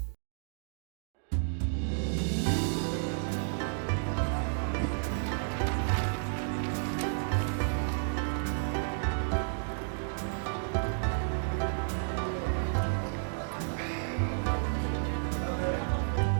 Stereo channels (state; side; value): silent; left; digital silence